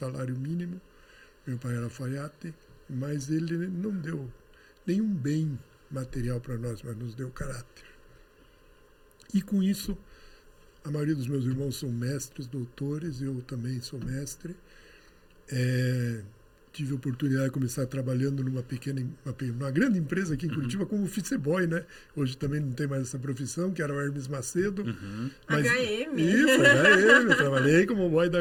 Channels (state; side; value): identical; both; correlation 1.00